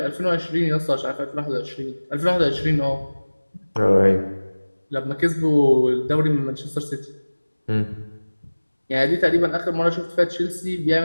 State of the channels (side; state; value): both; inverted; correlation -1.00